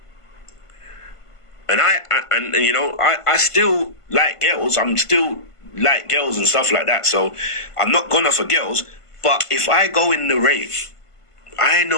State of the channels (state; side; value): late; right; 1.5 ms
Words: and I still like girls, I'm still like girls and stuff like that, so I'm not gonna for girls, but if I go in the rave, I